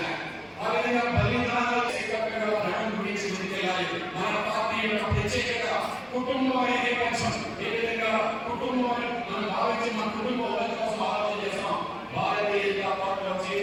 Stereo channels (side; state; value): both; identical; correlation 1.00